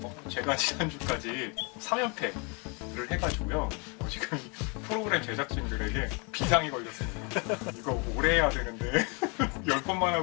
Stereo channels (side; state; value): right; quieter; 32.8 dB